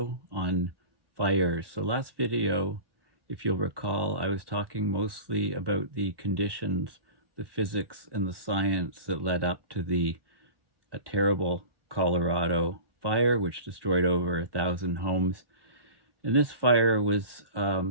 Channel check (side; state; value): left; late; 1.1 ms